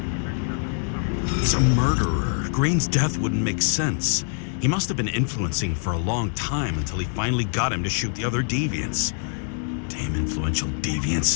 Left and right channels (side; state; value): right; silent; digital silence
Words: He's a murderer. Green's death wouldn't make sense. He must have been influencing for a long time until he finally got him to shoot the other deviants. Damn influential